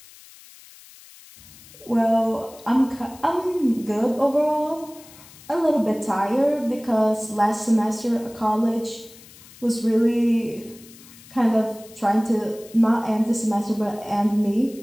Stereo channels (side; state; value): left; noise; hiss, 22 dB below the sound